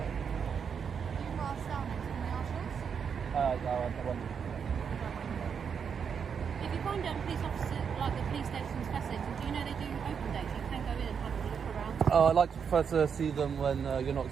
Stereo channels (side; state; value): left; quieter; 6.8 dB